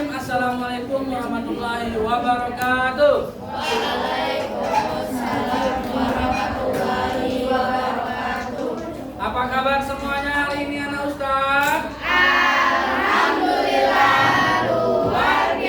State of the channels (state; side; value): identical; both; correlation 1.00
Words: Assalamualaikum warahmatullahi wabarakatuh. Waalaikumsalam warahmatullahi wabarakatuh. Apa kabar semuanya hari ini anak Ustaz? Alhamdulillah luar